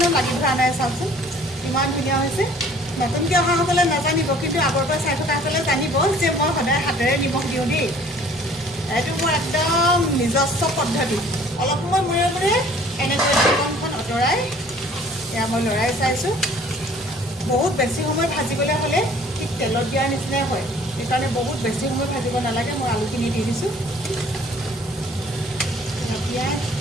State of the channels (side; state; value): both; normal; correlation 0.53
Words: লাগি ধৰা নাই চাওকচোন ইমান ধুনীয়া হৈছে নতুনকৈ অহাসকলে নাজানিব কিন্তু আগৰ পৰা চাই থকাসকলে জানিব যে মই সদায় হাতেৰে নিমখ দিওঁ দেই এইটো মোৰ একদম নিজস্ব পদ্ধতি অলপ সময় মূৰে মূৰে এনেকৈ ঢাকনখন আঁতৰাই এয়া মই লৰাই চাইছোঁ বহুত বেছি সময় ভাজিবলৈ হ'লে ঠিক তেলত দিয়াৰ নিচিনাই হয় সেইকাৰণে বহুত বেছি সময় ভাজিব নালাগে মই আলুখিনি দি দিছোঁ পিঁয়াজ